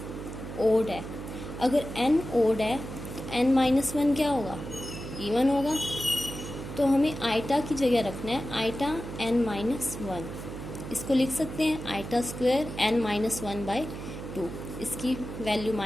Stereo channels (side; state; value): right; noise; hum, 9 dB below the sound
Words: ओड है, अगर n ओड है तो n माइनस वन क्या होगा इवन होगा, तो हमें आइटा की जगह रखना है आइटा n माइनस वन, इसको लिख सकते हैं iota square n minus one by two, इसकी वैल्यू